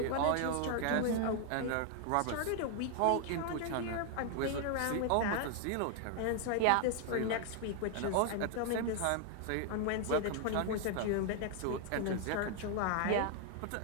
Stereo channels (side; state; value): both; different; correlation 0.00